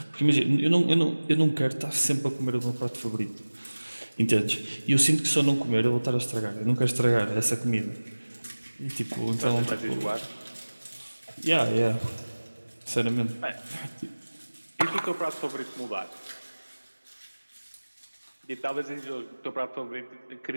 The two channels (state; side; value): inverted; both; correlation -1.00